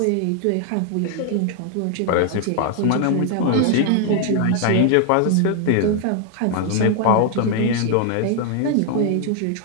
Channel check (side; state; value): both; different; correlation 0.00